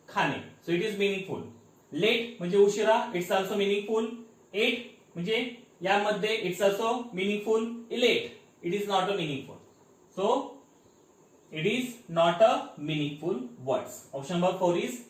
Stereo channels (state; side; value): identical; both; correlation 1.00